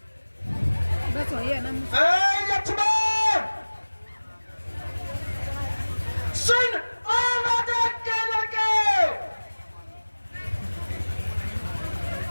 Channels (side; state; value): both; inverted; correlation -1.00